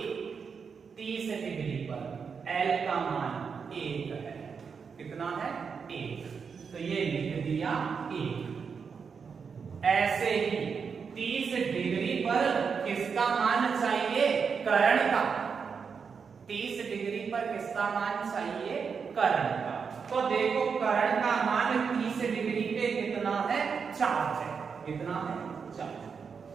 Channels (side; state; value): left; quieter; 6.0 dB